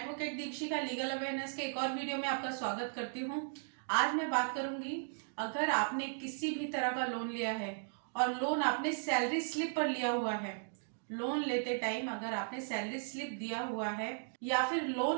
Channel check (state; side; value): silent; left; digital silence